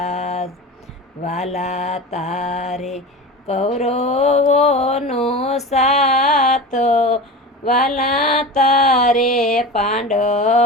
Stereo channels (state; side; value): normal; both; correlation 0.30